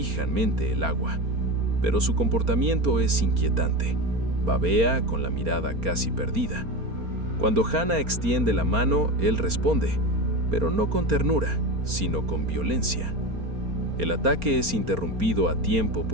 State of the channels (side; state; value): left; late; 4.3 ms